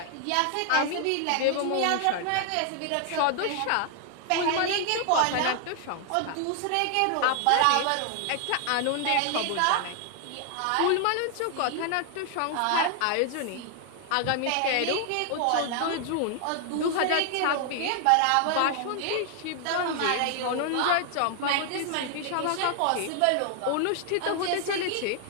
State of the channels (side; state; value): both; different; correlation 0.00